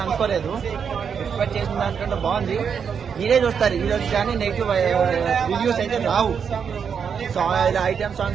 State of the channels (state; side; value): quieter; left; 6.9 dB